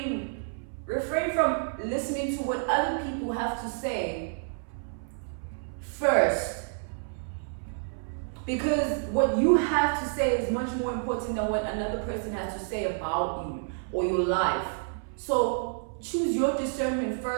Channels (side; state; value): left; silent; 58 dB below the other